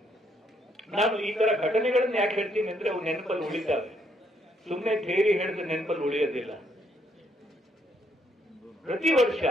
ನಾನು ಈ ತರ ಘಟನೆಗಳನ್ನ ಯಾಕೆ ಹೇಳ್ತೀನಿ ಅಂದ್ರೆ ಅವು ನೆನಪಲ್ಲಿ ಉಳಿತಾವೆ. ಸುಮ್ಮನೆ ಥಿಯರಿ ಹೇಳಿದ್ರೆ ನೆನಪಲ್ಲಿ ಉಳಿಯೋದಿಲ್ಲ. ಪ್ರತಿ ವರ್ಷ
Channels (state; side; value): normal; both; correlation 0.72